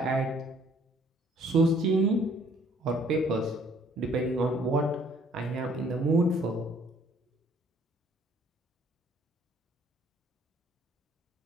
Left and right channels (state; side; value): normal; both; correlation 0.60